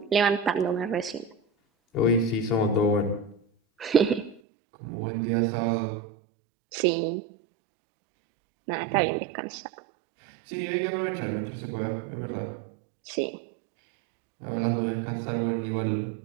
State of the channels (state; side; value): drops out; left; at 4.4 s